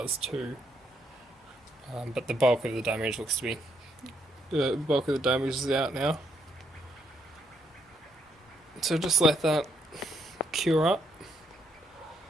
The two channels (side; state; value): both; normal; correlation 0.74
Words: too. But the bulk of the damage looks to be... The bulk of the damage is out now. So just let that cure up.